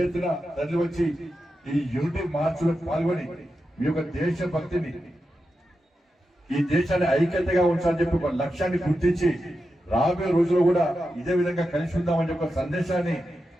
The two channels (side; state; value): both; normal; correlation 0.89